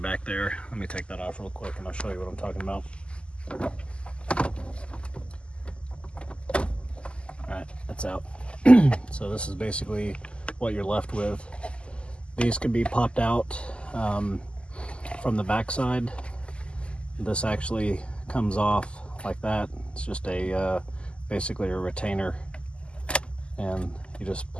there. Let me take that off real quick and I'll show you what I'm talking about. Alright, that's out. So this is basically what you're left with. These can be popped out from the back side. This actually comes off like that. It's just a basically a retainer, and you just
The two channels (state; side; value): late; right; 0.052 ms